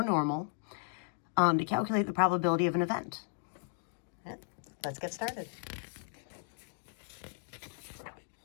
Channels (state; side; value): silent; right; 54 dB below the other